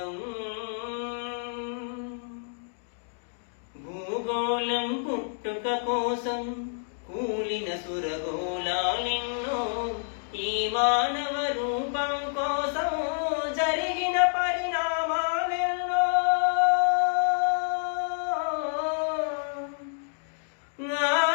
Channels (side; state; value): right; silent; digital silence